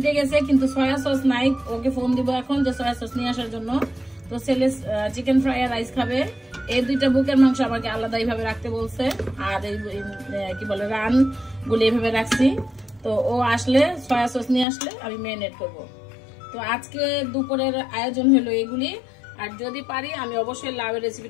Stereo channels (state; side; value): drops out; right; at 14.7 s